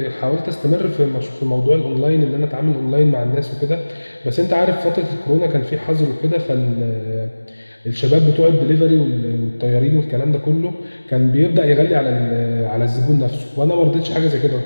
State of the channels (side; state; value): both; inverted; correlation -1.00